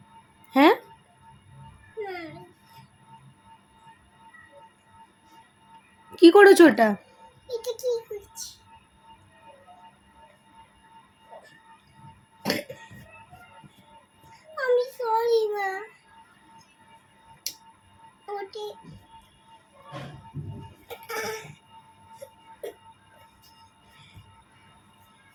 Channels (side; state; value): both; identical; correlation 1.00